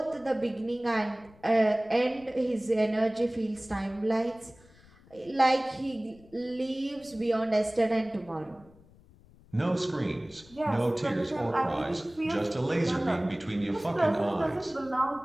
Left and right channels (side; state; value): left; noise; rumble, 26 dB below the sound